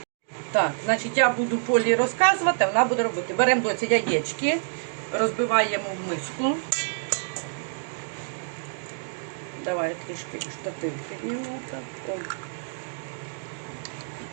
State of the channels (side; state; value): left; silent; digital silence